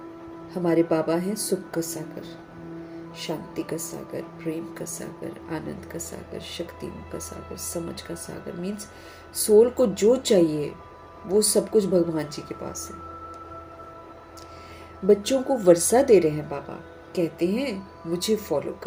हमारे बाबा हैं सुख का सागर, शांति का सागर, प्रेम का सागर, आनंद का सागर, शक्तियों का सागर, समझ का सागर। मीन्स सोल को जो चाहिए वो सब कुछ भगवान जी के पास है। बच्चों को वर्षा दे रहे हैं बाबा, कहते हैं मुझे फॉलो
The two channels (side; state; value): both; identical; correlation 1.00